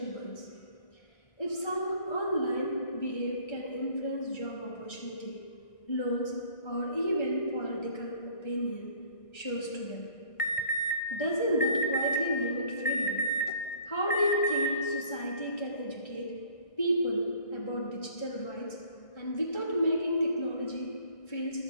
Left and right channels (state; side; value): late; right; 1.6 ms